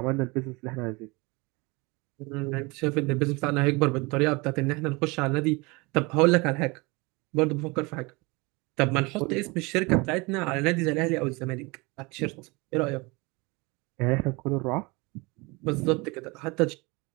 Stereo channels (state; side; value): quieter; left; 26.0 dB